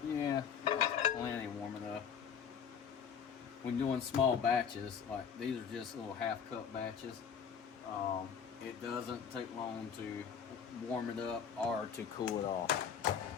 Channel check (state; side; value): quieter; right; 7.3 dB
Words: Yeah, plenty warm enough. When doing small batches, like these are just little half cup batches, it doesn't take long to warm it up or to cool it off.